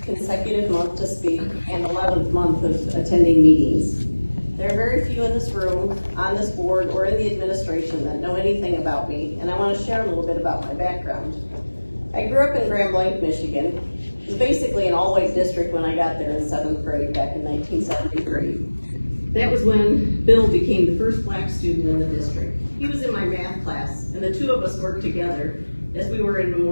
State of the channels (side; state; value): both; inverted; correlation -1.00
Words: consecutive month to speak and 11th month of attending meetings. There are very few in this room, on this board, or in the administration that know anything about me, and I want to share a little bit about my background. I grew up in Grand Blanc, Michigan. It was basically an all-white district when I got there in 7th grade back in 1973. That was when Bill became the first black student in the district. He was in my math class, and the two of us worked together as we were in a